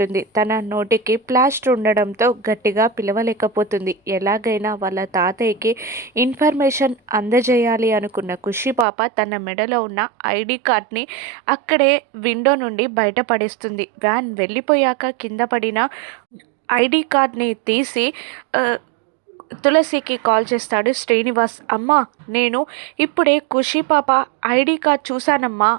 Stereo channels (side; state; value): left; drops out; at 8.8 s